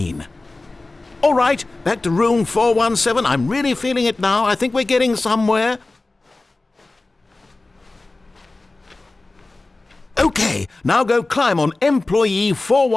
All right, back to room 417. I'm really feeling it now. I think we're getting somewhere. Okay, now go climb on employee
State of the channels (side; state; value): right; quieter; 3.2 dB